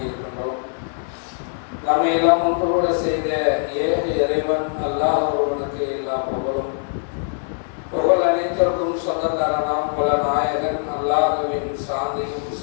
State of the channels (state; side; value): silent; right; digital silence